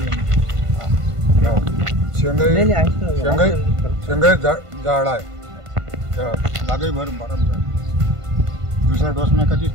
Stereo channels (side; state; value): left; late; 1.5 ms